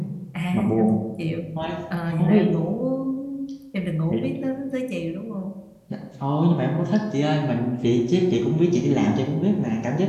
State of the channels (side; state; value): both; identical; correlation 1.00